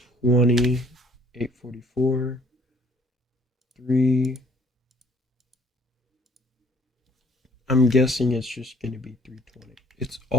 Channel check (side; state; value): both; normal; correlation 0.59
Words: $844. 3... I'm guessing it's just going to be 320. It's